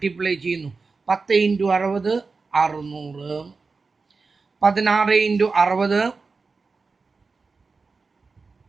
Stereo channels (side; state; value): left; quieter; 4.3 dB